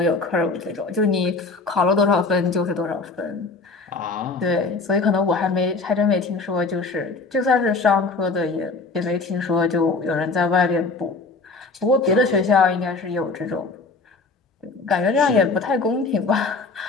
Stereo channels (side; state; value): right; quieter; 3.9 dB